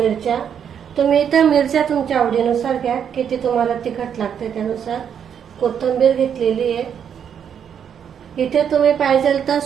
तुम्ही इथे मिरच्या तुमच्या आवडीनुसार घ्या, किती तुम्हाला तिखट लागते त्यानुसार। कोथिंबीर घेतलेली आहे। इथे तुम्ही पाहिजे तर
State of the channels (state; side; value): quieter; left; 8.2 dB